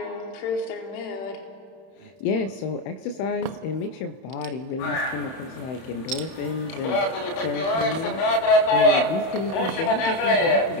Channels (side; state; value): right; late; 31 ms